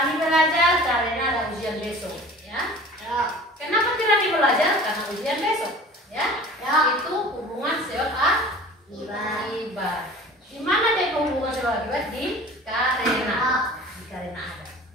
belajar karena ada ujian besok, ya. Kenapa Rani belajar? Karena ujian besok, ya. Itu hubungan sebab akibat. Di mana dia hubungan sebab akibat? Di karena. Di karena ada.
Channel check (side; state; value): both; normal; correlation 0.43